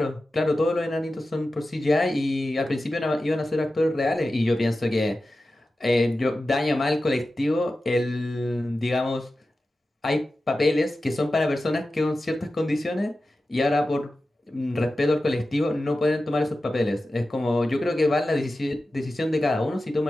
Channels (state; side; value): normal; both; correlation 0.93